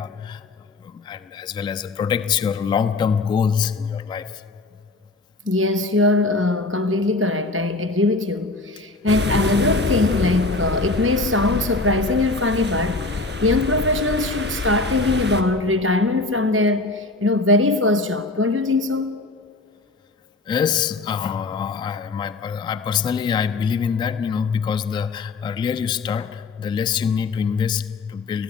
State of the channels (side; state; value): right; quieter; 3.3 dB